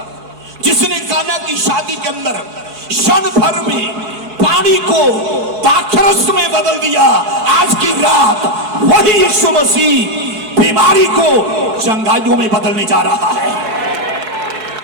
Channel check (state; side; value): late; left; 4.7 ms